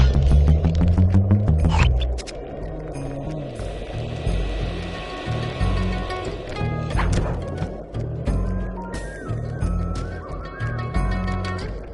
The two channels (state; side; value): identical; both; correlation 1.00